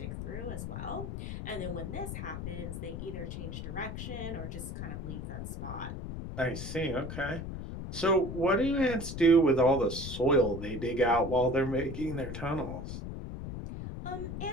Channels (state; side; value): noise; left; rumble, 7 dB below the sound